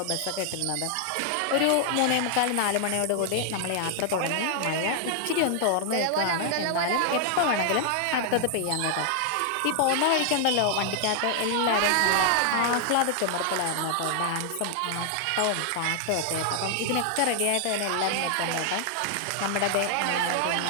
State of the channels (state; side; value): different; both; correlation 0.00